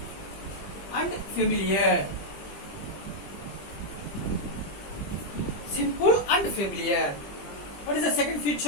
and familiar. Simple and familiar. What is the second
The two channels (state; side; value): late; right; 20 ms